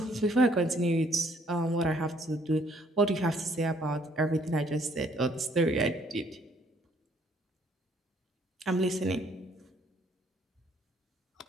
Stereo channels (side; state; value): both; normal; correlation 0.65